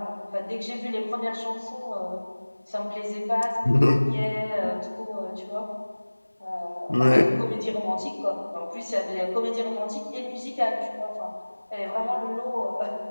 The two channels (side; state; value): both; inverted; correlation -1.00